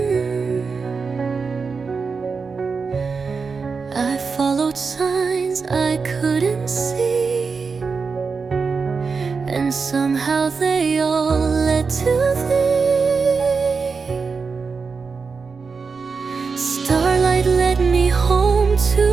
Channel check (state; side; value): quieter; left; 4.9 dB